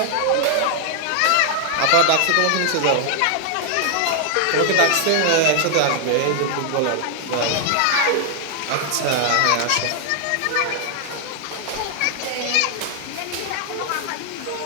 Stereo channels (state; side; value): different; both; correlation 0.00